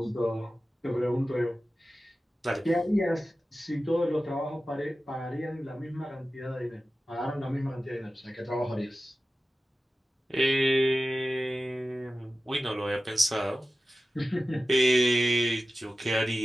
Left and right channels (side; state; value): both; normal; correlation 0.94